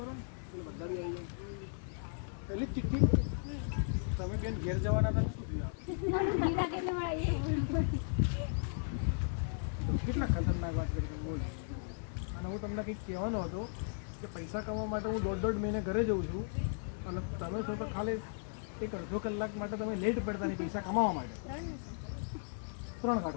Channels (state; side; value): silent; right; digital silence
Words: पहले तिथि તમે બેન ઘેર જવાના હતા કેટલા ખતરનાક વાત કરી બોલ. અને હું તમને કંઈક કહેવાનો હતો કે પૈસા કમાવા માટે હું દોઢ મહિને ઘરે જઉં છું અને તમે છો તો ખાલી એક અડધો કલાક માટે તમે લેટ પડતા નહીં પૈસા કમાવા માટે. 3